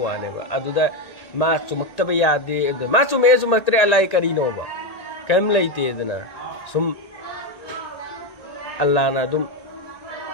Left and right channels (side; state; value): right; late; 1.6 ms